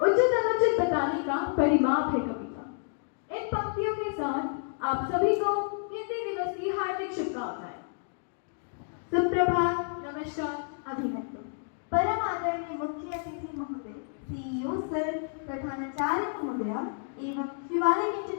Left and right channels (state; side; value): silent; right; digital silence